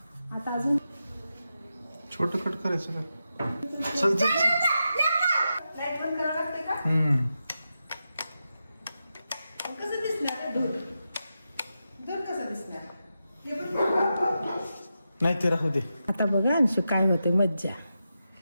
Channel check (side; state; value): both; inverted; correlation -0.89